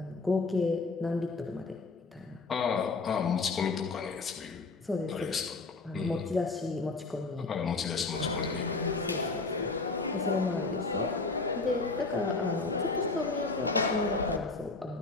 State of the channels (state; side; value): quieter; right; 3.9 dB